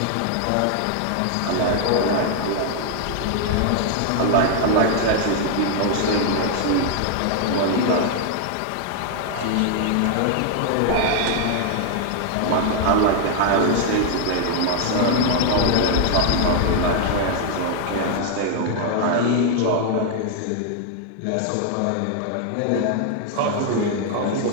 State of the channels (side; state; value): both; different; correlation 0.00